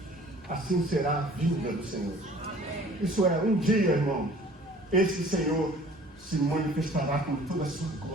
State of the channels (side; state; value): both; normal; correlation 0.50